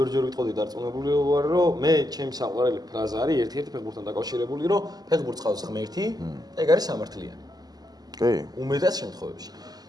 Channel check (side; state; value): left; late; 0.19 ms